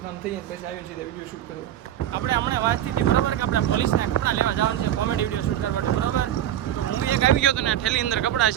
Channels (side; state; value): left; quieter; 11.5 dB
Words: કામ થઈ જાય પછી આવીને સીધા વિડીયો શૂટ કરવા. આપણે હમણાં વાત થઈ હતી, બરોબર, કે આપણે પોલીસના કપડાં લેવા જવાનું છે કોમેડી વિડીયો શૂટ કરવા, બરોબર? તો હું એક આવી ગયો હતો ને, ઠેલી અંદર કપડાં